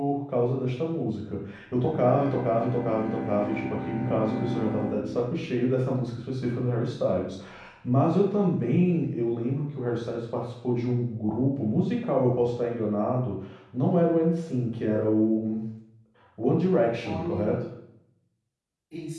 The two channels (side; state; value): both; identical; correlation 1.00